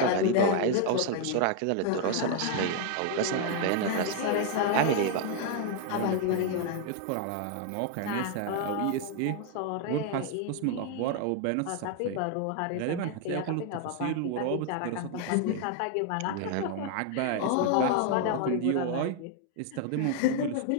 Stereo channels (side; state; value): both; different; correlation 0.00